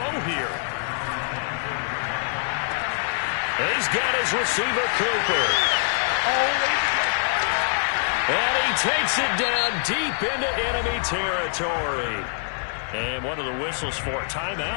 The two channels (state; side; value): silent; right; 61 dB below the other